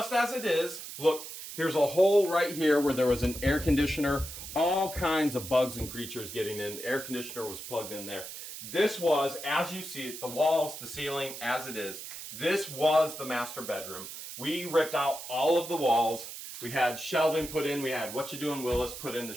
as it is, look, here's a hole right here where there was an air conditioner, all kinds of bugs and creatures getting in. The air conditioner was plugged in there. This was, as you see it, the walls, the ceiling, as it is. This was the master bedroom. We ripped out all of the walls. We had shelving put in. We had What You Doing Willis put in the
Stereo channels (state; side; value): noise; right; hiss, 10 dB below the sound